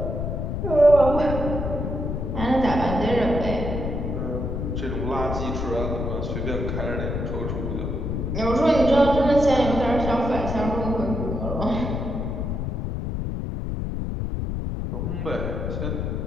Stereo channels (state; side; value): noise; left; rumble, 3 dB below the sound